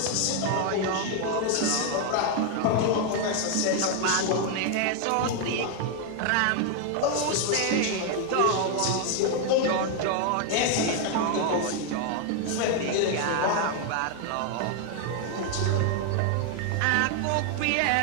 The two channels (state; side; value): different; both; correlation 0.01